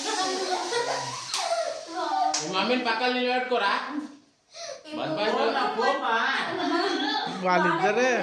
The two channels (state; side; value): identical; both; correlation 1.00